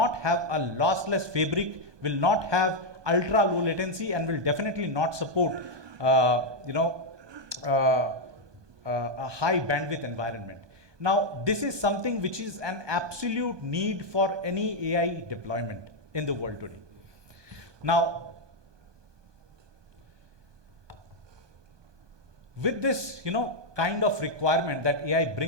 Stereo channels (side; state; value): left; late; 1.2 ms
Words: have a lossless fabric, will not have ultra low latency, and will definitely not support a high bandwidth environment. Now, this is something which is an absolute need for any AI deployment in the world today. Now, with this, kind of requirement that AI